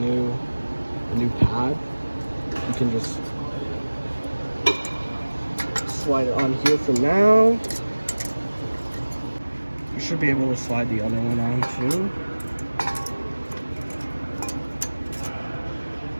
pad. You can just slide it on here for now. You should be able to slide the other one on too.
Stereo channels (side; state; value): both; inverted; correlation -1.00